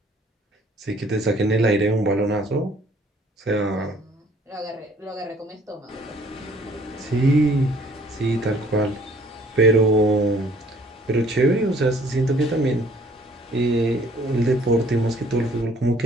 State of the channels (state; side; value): normal; both; correlation 0.58